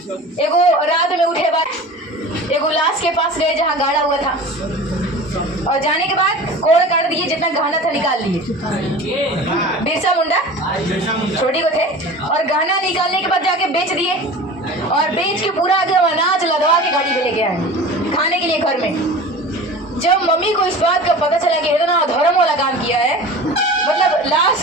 एगो रात में उठे बाद एगो लाश के पास गए जहाँ गाड़ा हुआ था, और जाने के बाद कोड़ काट दिए, जितना गहना था निकाल लिए। बिरसा मुंडा छोटी को थे, और गहना निकालने के बाद जाके बेच दिए, और बेच के पूरा अनाज लदवा के गाड़ी में लेके आए खाने के लिए घर में। जब मम्मी को इस बात का पता चला कि इतना धर्म वाला काम किया है, मतलब लाश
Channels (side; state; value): both; normal; correlation 0.37